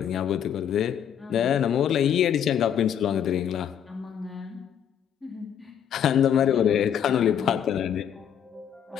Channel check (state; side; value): quieter; right; 9.0 dB